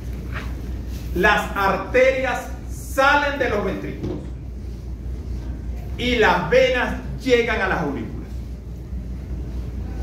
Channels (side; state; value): both; identical; correlation 1.00